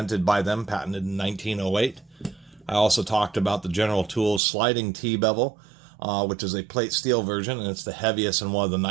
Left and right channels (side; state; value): left; drops out; at 4.4 s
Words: by them, patented in 1908. I also talked about the General Tools sliding T-bevel, which is a plate steel version, and it's the heaviest and one of the